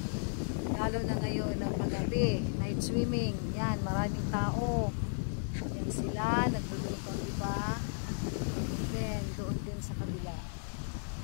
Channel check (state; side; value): silent; right; digital silence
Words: lalo na ngayon ng paggabi, night swimming. Yan, maraming tao. Yan sila, nagluluto, diba? Then, doon din sa kabila.